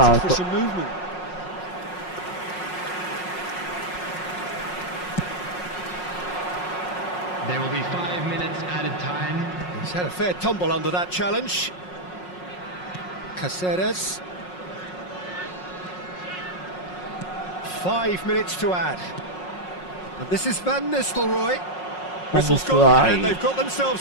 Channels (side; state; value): right; late; 5.5 ms